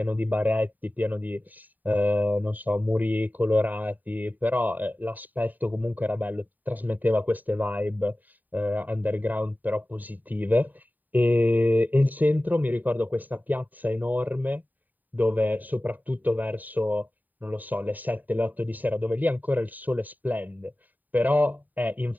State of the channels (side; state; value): left; late; 0.085 ms